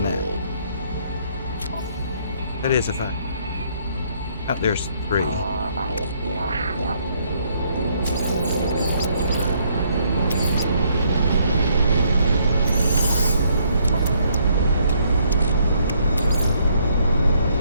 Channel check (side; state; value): both; inverted; correlation -0.69